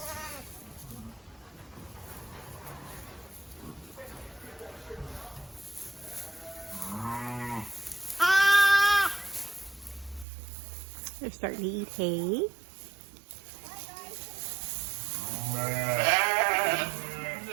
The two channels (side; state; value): left; drops out; at 10.2 s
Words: They're starting to eat hay.